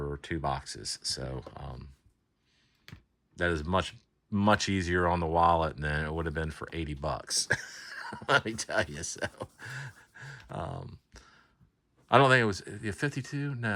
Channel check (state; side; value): identical; both; correlation 1.00